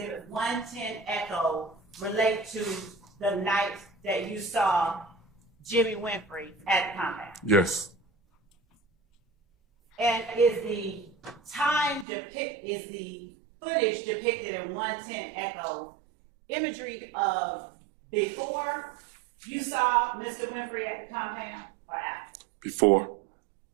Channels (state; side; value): drops out; left; at 12.1 s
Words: 110 Echo relate to the night that you saw Jimmy Winfrey at the compound? Yes, And is the footage depicted in 110 Echo imagery of before you saw Mr. Winfrey at the compound or after? before.